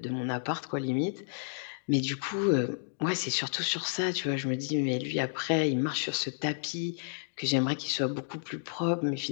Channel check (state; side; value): silent; right; digital silence